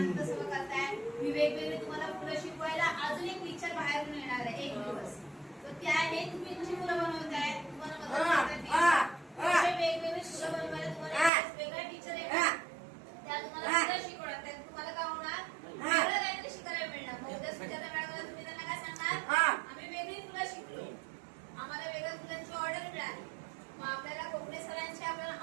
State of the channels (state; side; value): drops out; left; at 11.3 s